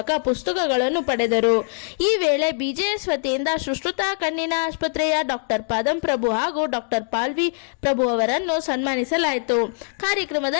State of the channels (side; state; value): right; silent; 64 dB below the other